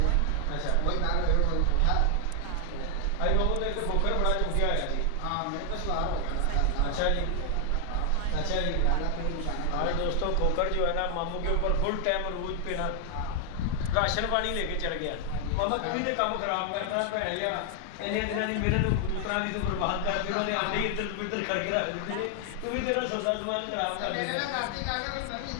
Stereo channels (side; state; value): both; different; correlation 0.00